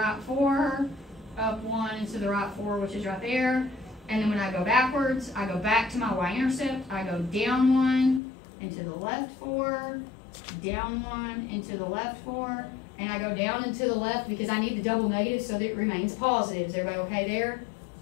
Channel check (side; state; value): right; drops out; at 8.2 s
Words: 4, up 1 and to the right 4, which is right there. And then when I go backwards, I go back to my y-intercept. I go down 1 and to the left 4, down 1 and to the left 4, and I go down and to the left because I need the double negative so that it remains positive. Is everybody okay there?